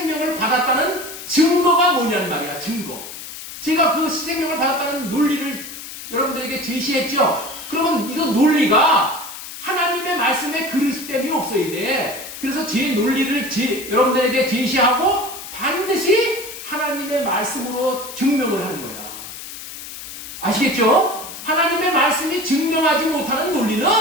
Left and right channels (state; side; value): noise; left; hiss, 11 dB below the sound